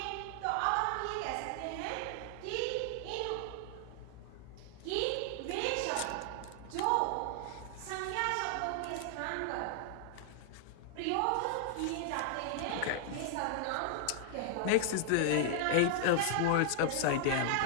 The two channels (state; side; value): different; both; correlation -0.01